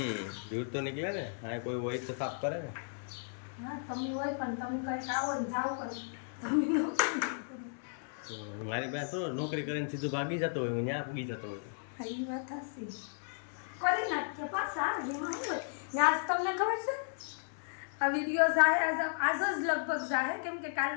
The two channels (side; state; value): right; silent; digital silence